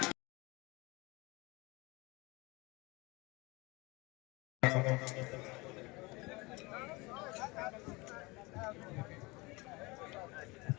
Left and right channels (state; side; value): quieter; right; 24.6 dB